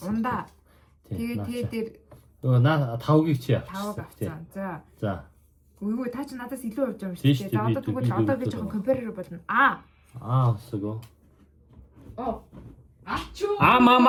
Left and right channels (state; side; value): identical; both; correlation 1.00